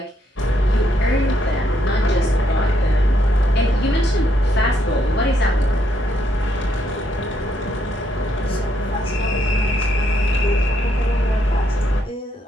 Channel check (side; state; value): both; normal; correlation 0.75